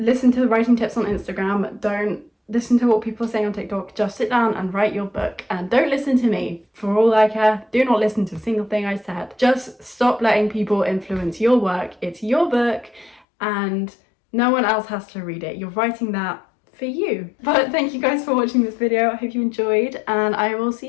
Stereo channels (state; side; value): drops out; right; at 13.2 s